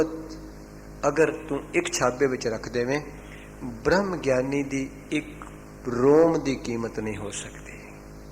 अगर तू एक छाबे विच रख देवें, ब्रह्म ज्ञानी दी एक रोम दी कीमत नहीं हो सकती।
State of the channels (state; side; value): identical; both; correlation 1.00